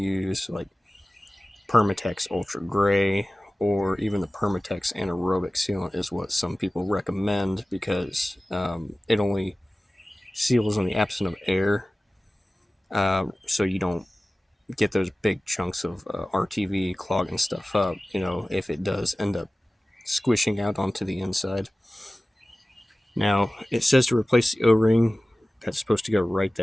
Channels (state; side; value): normal; both; correlation 0.97